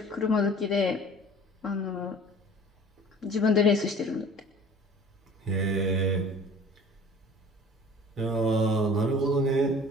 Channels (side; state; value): both; normal; correlation 0.46